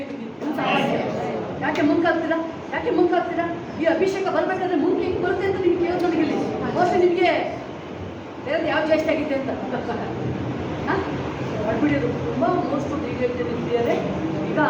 ಇದು ಯಾಕೆ ಮುಂಕಾಗ್ತೀರಾ? ಯಾಕೆ ಮುಂಕಾಗ್ತೀರಾ? ಈ ಅಭಿಷೇಕ ಬರ್ಬೇಕಾದ್ರೆ ಮುಂದೆ ಹೆಂಗೆ ಬರುತ್ತೆ ಅಂತ ನಿಮ್ಗೆ ಕೇಳೋದು ನನಗೆ ಇಲ್ಲಿ ಬಹುಶಃ ನಿಮಗೆ ಬೇರೆ ಯಾವ ಜಾಸ್ತಿ ಆಗಿದೆ ಅಂತ ಮಾಡ್ಬಿಡಿಯೋದು ತುಂಬ ಮೋಸ್ಟ್ ಈಗ ಹೇಳ್ತಿದ್ದಾರೆ. ಈಗ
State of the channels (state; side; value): identical; both; correlation 1.00